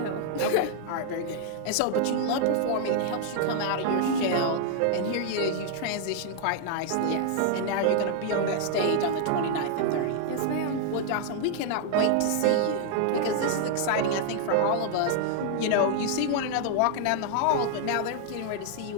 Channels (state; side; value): different; both; correlation 0.00